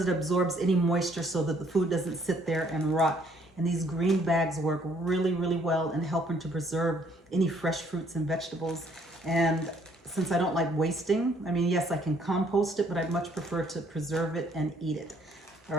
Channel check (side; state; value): both; normal; correlation 0.64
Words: it absorbs any moisture so that the food doesn't sit there and rot. And these green bags work really, really well in helping to preserve any fresh fruits and vegetables. And since I don't like wasting, I mean, yes, I can compost it, but I'd much prefer to preserve it and eat it. All